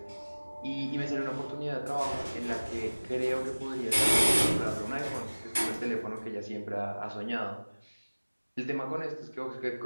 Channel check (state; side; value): inverted; both; correlation -1.00